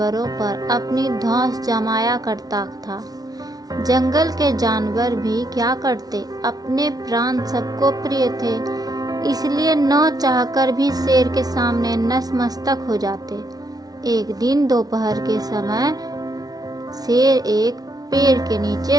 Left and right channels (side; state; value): left; late; 0.19 ms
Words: पर अपनी धौंस जमाया करता था। जंगल के जानवर भी क्या करते, अपने प्राण सबको प्रिय थे, इसलिए न चाहकर भी शेर के सामने नतमस्तक हो जाते। एक दिन दोपहर के समय शेर एक पेड़ के